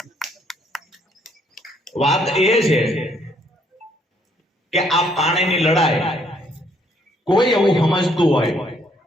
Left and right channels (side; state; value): both; normal; correlation 0.67